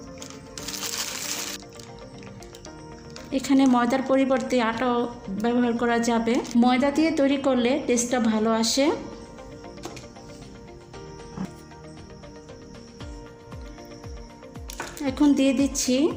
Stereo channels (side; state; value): both; identical; correlation 1.00